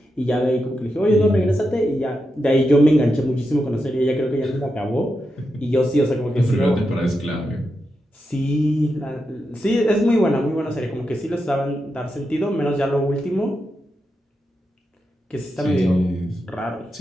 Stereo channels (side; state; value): both; normal; correlation 0.87